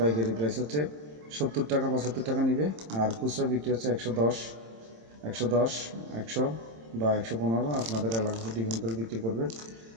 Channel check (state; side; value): late; left; 27 ms